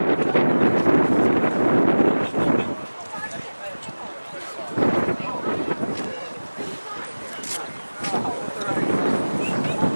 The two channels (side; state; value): both; inverted; correlation -1.00